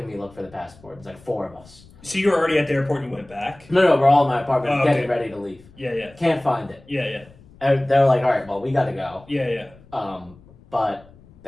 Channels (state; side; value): noise; left; rumble, 25 dB below the sound